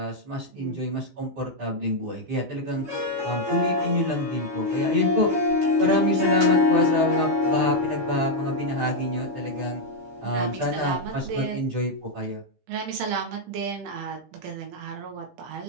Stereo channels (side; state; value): left; late; 15 ms